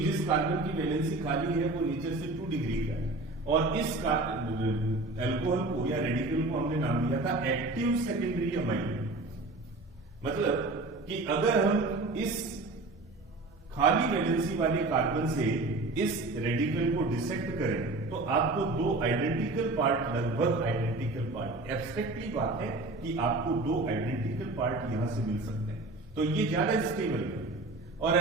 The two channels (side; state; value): left; quieter; 3.1 dB